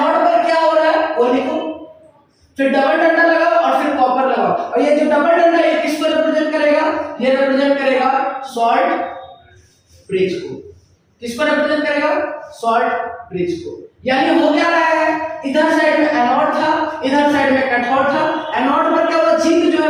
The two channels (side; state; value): both; identical; correlation 1.00